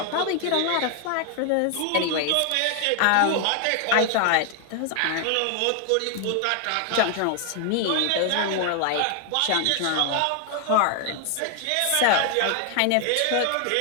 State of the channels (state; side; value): different; both; correlation 0.00